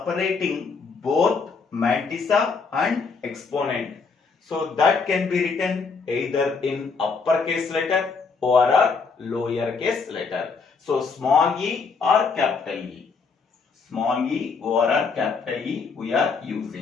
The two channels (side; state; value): right; quieter; 4.9 dB